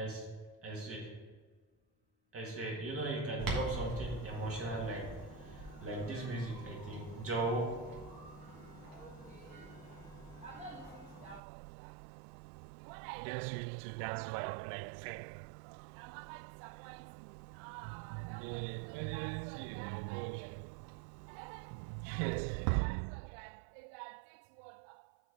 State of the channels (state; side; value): drops out; left; at 11.4 s